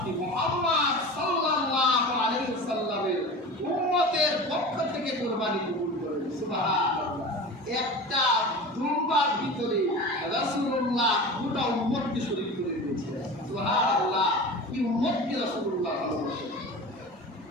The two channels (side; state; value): both; normal; correlation 0.33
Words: মুহাম্মদ সাল্লাল্লাহু আলাইহি ওয়াসাল্লামের উম্মতের পক্ষ থেকে কুরবানি কবুল করেন। সুবহানাল্লাহ। একটা দুম্বার ভিতরে রাসূলুল্লাহ গোটা উম্মতকে শরীক করে দিয়েছিলেন। সুবহানাল্লাহ। কি উম্মতকে রাসূলুল্লাহ ভালোবাসেন।